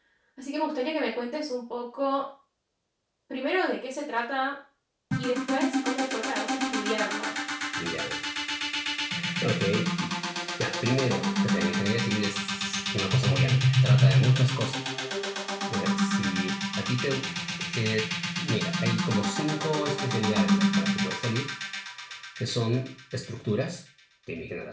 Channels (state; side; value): identical; both; correlation 1.00